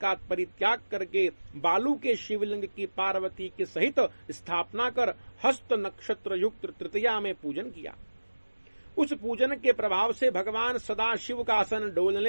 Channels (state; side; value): inverted; both; correlation -1.00